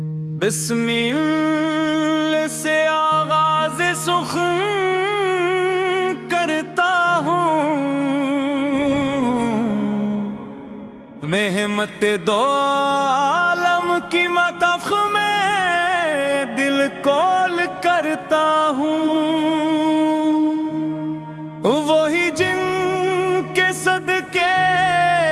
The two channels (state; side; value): identical; both; correlation 1.00